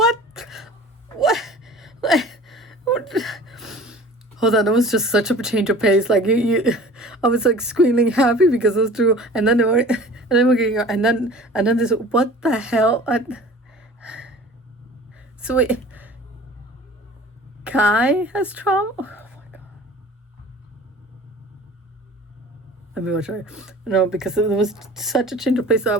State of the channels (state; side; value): normal; both; correlation 0.43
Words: Hold on, it was just such a change of pace. Like I was like squealing happy because those two, and then we're getting, and then this. What the hell? So wait, Kai has trauma. Oh my god. Let me watch her. No, because it was such a change of pace. So I